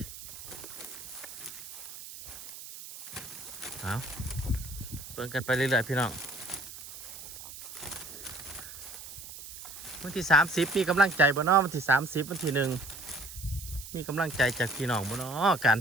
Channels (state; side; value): noise; right; hiss, 13 dB below the sound